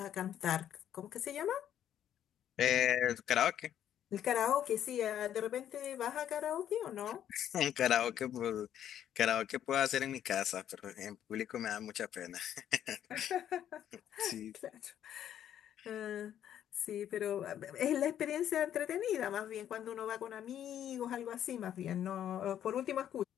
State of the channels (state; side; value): quieter; right; 10.4 dB